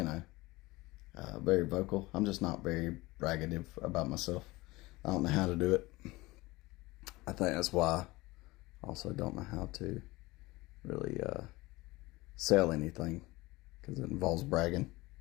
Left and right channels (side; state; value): right; quieter; 21.1 dB